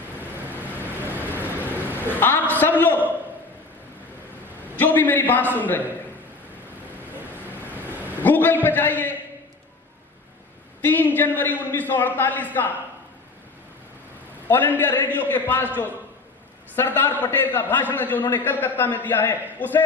आप सब लोग जो भी मेरी बात सुन रहे हैं, गूगल पे जाइए, 3 जनवरी 1948 का ऑल इंडिया रेडियो के पास जो सरदार पटेल का भाषण है, जो उन्होंने कलकत्ता में दिया है, उसे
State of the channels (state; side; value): quieter; right; 3.6 dB